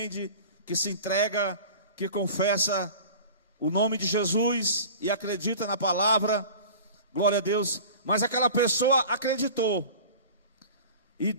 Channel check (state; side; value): inverted; both; correlation -0.39